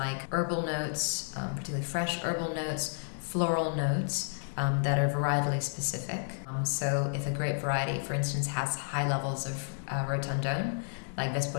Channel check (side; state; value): right; silent; digital silence